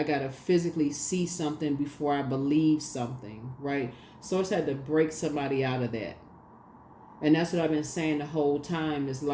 gotta physically see something before I believe something, right? Source had to break somebody out of that. And that's what I've been saying the whole time is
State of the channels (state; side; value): identical; both; correlation 1.00